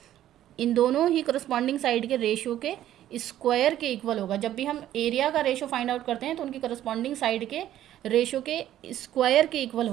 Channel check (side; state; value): left; quieter; 12.4 dB